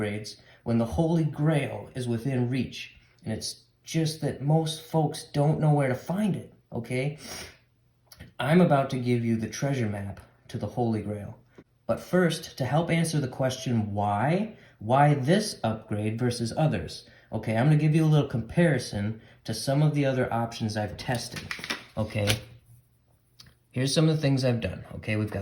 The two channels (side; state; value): both; identical; correlation 1.00